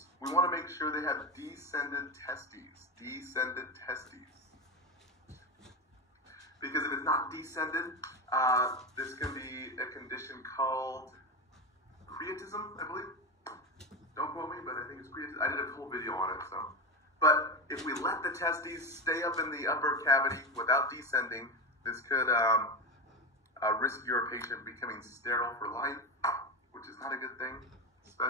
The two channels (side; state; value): both; normal; correlation 0.16